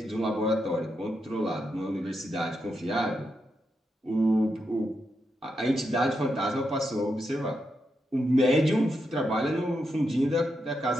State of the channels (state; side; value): normal; both; correlation 0.84